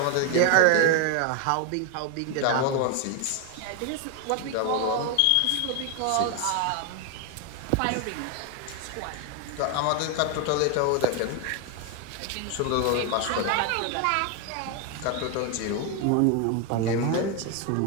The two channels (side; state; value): both; different; correlation 0.01